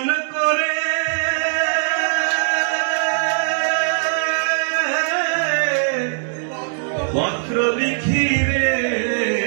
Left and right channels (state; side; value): silent; left; 65 dB below the other